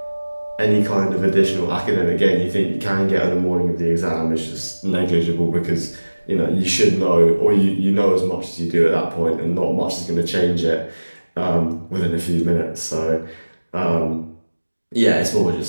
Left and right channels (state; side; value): inverted; both; correlation -1.00